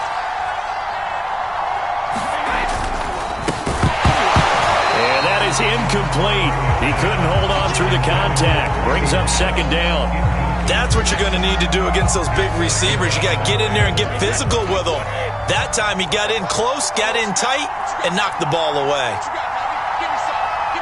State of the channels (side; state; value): both; identical; correlation 1.00